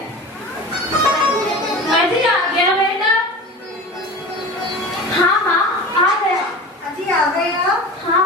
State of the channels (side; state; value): both; normal; correlation 0.34